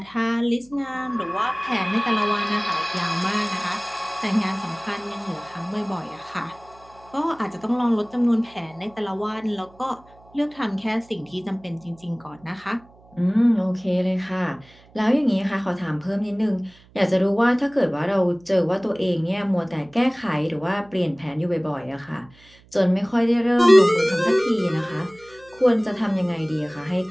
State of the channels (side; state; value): right; noise; hum, 27 dB below the sound